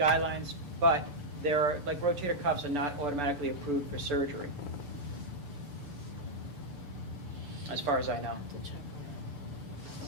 but there are, like rotator cuffs are not automatically approved for surgery, as far as I know.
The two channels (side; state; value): left; late; 6.9 ms